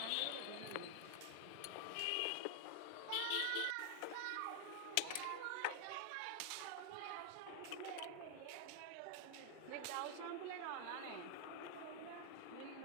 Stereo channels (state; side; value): different; both; correlation 0.00